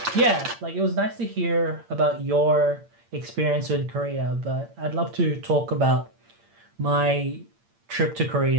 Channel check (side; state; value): left; late; 8.7 ms